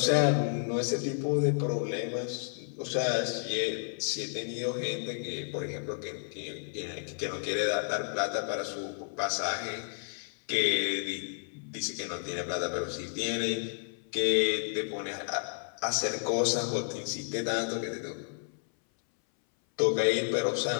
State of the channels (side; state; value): right; silent; 57 dB below the other